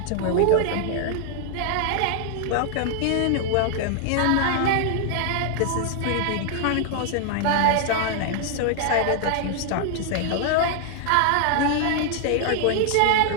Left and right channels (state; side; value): different; both; correlation 0.00